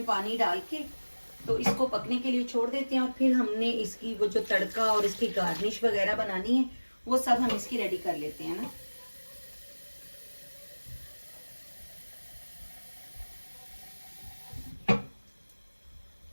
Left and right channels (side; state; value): both; inverted; correlation -1.00